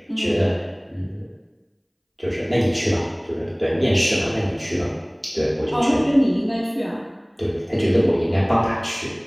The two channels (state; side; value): identical; both; correlation 1.00